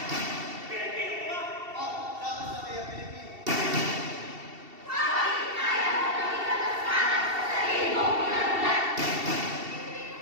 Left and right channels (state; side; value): late; left; 2.7 ms